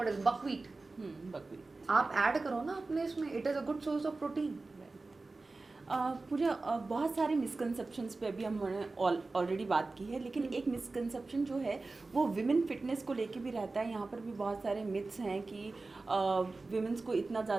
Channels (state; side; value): quieter; left; 3.5 dB